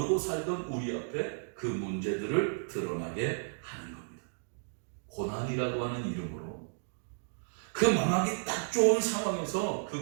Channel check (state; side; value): silent; left; digital silence